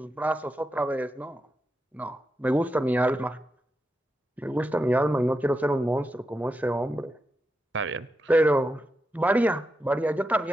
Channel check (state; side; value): normal; both; correlation 0.87